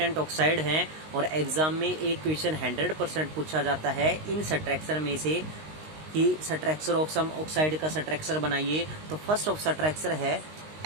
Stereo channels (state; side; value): late; left; 19 ms